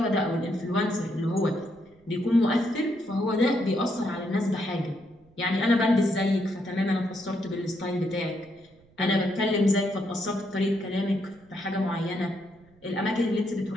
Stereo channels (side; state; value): right; noise; rumble, 30 dB below the sound